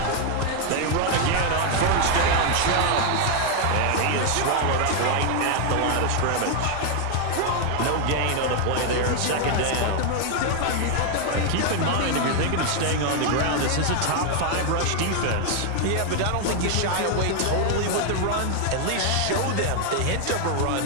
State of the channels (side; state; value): both; different; correlation 0.00